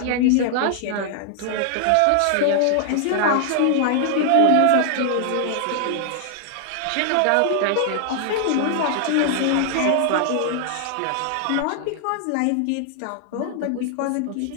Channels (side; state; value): both; different; correlation 0.00